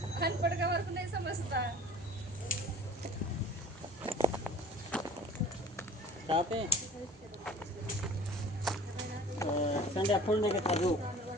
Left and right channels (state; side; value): normal; both; correlation 0.47